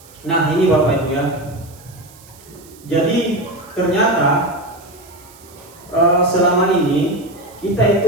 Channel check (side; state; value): right; noise; hiss, 24 dB below the sound